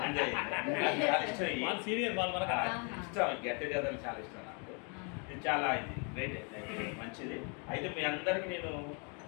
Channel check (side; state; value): right; quieter; 36.4 dB